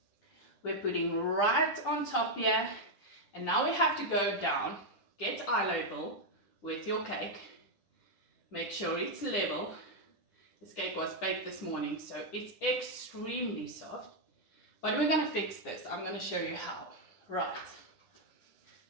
we're putting right on top here, and now we have to go down, get eye level with your cake, make sure it's level. This cake was baked this morning, so it's extremely soft, but we're going to fix this. I'm going to show you how. Right,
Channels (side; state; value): right; late; 9.9 ms